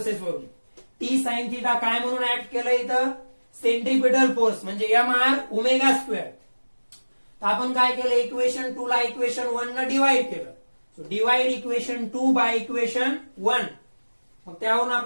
वरून. टी साइन थिटा काय म्हणून ऍक्ट केलं इथं, सेंट्रिपिटल फोर्स म्हणजे एम आर ओमेगा स्क्वेअर. तर आपण काय केलं, इक्वेशन 2 ला इक्वेशन 1 न डिवाइड केलं. So divide equation 2 by equation 1. मग त्यावरून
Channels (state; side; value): inverted; both; correlation -1.00